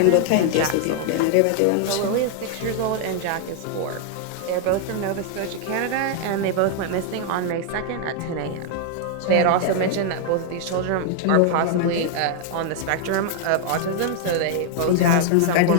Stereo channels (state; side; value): different; both; correlation 0.00